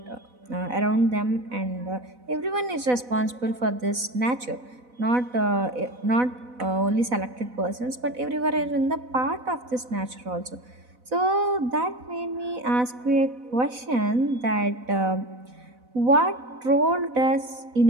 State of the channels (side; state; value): left; late; 4.0 ms